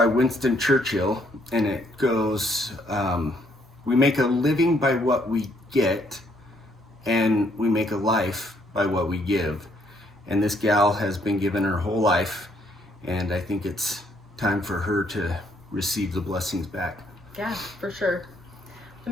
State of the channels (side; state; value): both; normal; correlation 0.70